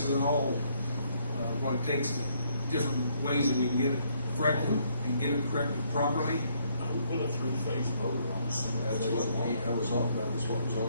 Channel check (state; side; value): inverted; both; correlation -0.70